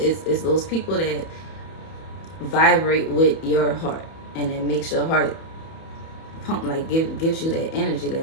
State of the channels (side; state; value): right; late; 31 ms